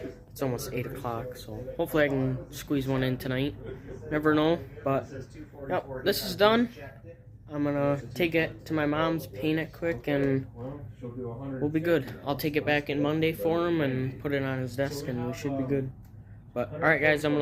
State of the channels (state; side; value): identical; both; correlation 1.00